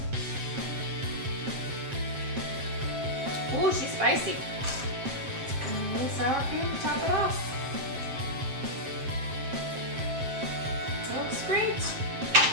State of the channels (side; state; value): left; late; 7.6 ms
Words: Ooh, she's spicy. And a little sour cream to top it off. Looks great.